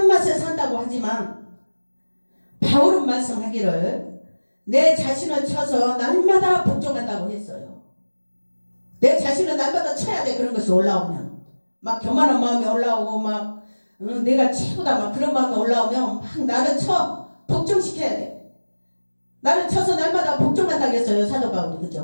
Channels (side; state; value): both; inverted; correlation -1.00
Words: 맛에 산다고 하지만 바울은 말씀하기를 내 자신을 쳐서 날마다 복종한다고 했어요. 내 자신을 날마다 쳐야 돼. 그런 것이 올라오면 막 교만한 마음이 올라오고 막 내가 최고다 막 그런 마음이 올라오면 막 나를 쳐 복종시켜야 돼. 나를 쳐서 날마다 복종한다고 했어요. 사도 바울이.